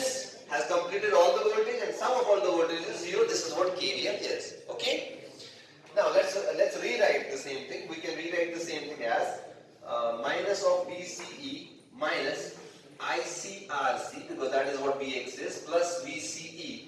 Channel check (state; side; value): identical; both; correlation 1.00